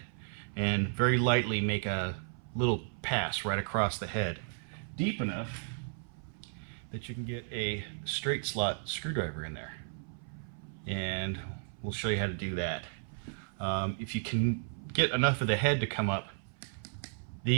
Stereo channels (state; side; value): silent; left; 55 dB below the other